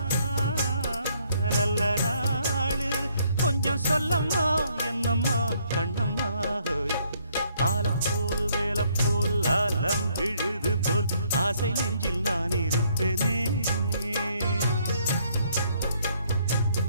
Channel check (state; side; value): inverted; both; correlation -0.67